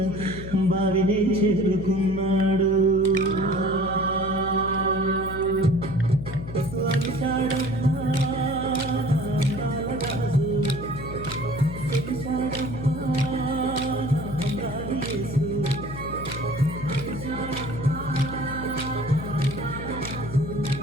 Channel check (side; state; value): left; noise; hum, 10 dB below the sound